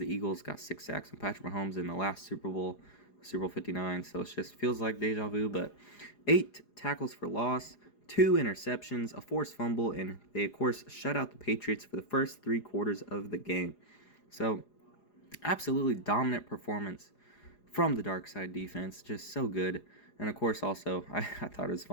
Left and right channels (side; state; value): right; late; 4.9 ms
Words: Eagles got 6 sacks and Patrick Mahomes in the last Super Bowl, Super Bowl 59. So it just feels like deja vu. But 8 tackles for loss, 2 interceptions, a forced fumble, and they, of course, shut out the Patriots for the first 3 quarters of the game. So, absolutely dominant performance from the dark side defense. Just so good. And, of course, also, I thought it was